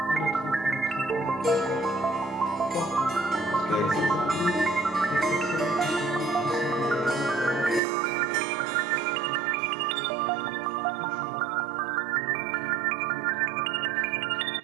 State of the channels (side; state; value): left; drops out; at 7.8 s